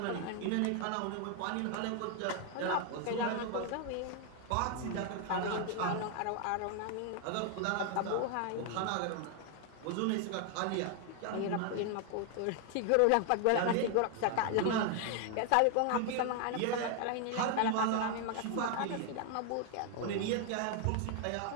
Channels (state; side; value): different; both; correlation 0.00